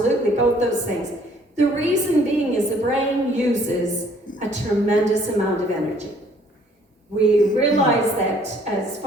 both those things. The reason being is the brain uses a tremendous amount of energy. We realize that as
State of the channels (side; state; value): both; normal; correlation 0.60